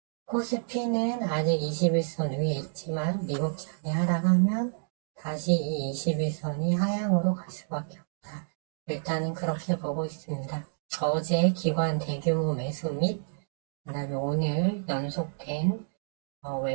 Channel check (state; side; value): silent; left; digital silence